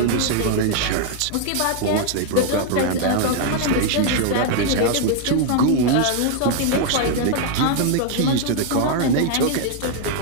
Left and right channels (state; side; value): different; both; correlation 0.00